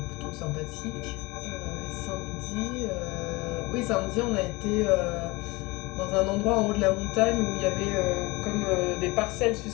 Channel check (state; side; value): quieter; right; 23.5 dB